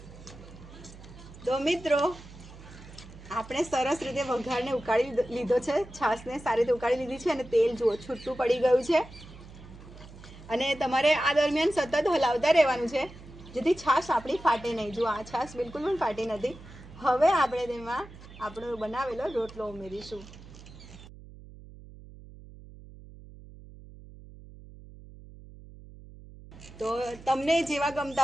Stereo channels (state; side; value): noise; right; hum, 18 dB below the sound